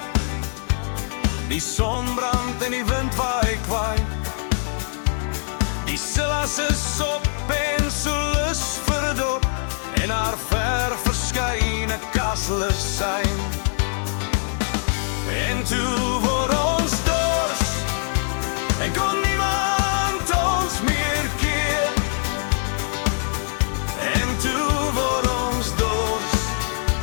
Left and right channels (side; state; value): right; silent; 63 dB below the other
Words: die son brand en die wind waai kwaai. Die Silas is op en so lus vir 'n dop en haar ver verskyne kastel is syn. En toe word ons dors en kon niemand ons meer keer. En toe word ons dors,